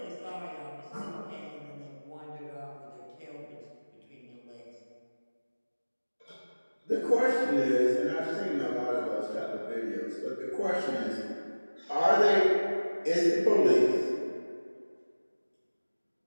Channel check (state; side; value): inverted; both; correlation -1.00